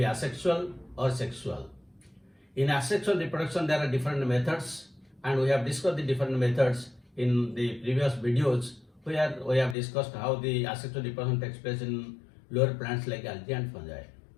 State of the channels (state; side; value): drops out; right; at 9.8 s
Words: asexual or sexual. In asexual reproduction, there are different methods, and we have discussed the different methods in the previous videos, where we have discussed how the asexual reproduction takes place in lower plants like algae and fungi.